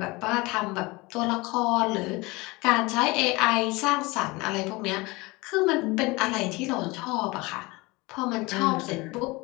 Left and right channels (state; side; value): quieter; right; 23.7 dB